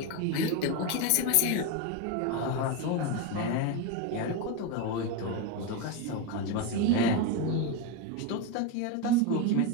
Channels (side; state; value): both; different; correlation 0.03